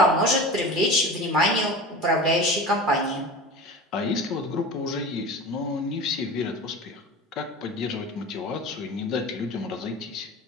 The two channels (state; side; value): normal; both; correlation 0.33